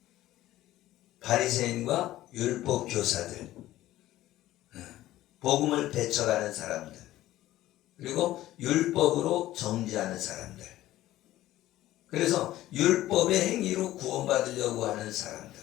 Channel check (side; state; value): right; quieter; 15.1 dB